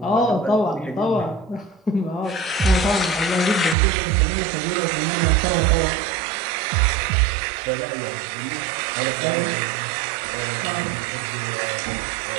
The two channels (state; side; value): drops out; left; at 3.8 s